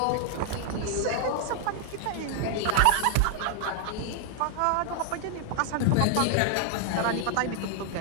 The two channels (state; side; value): different; both; correlation 0.00